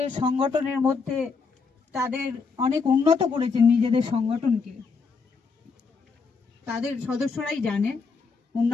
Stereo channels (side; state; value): right; quieter; 4.9 dB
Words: সংগঠনের মধ্যে তাদের অনেক উন্নত করেছেন নিজেদের সংগঠনকে, তাদের সদস্যরাই জানেন